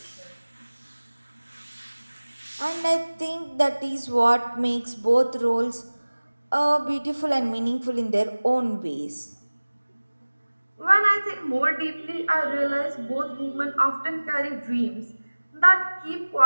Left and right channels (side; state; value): both; inverted; correlation -1.00